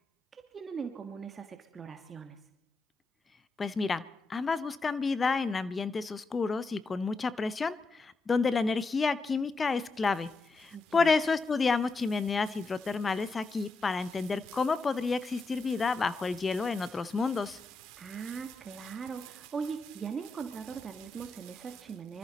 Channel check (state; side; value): quieter; right; 3.5 dB